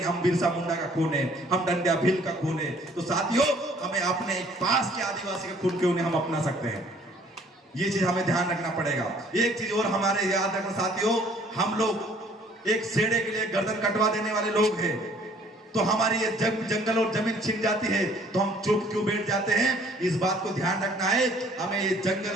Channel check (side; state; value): both; normal; correlation 0.58